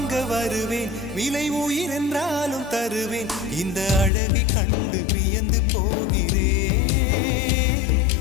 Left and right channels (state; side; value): drops out; right; at 4.1 s